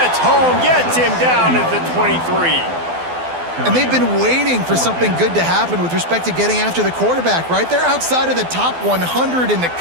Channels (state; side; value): late; left; 12 ms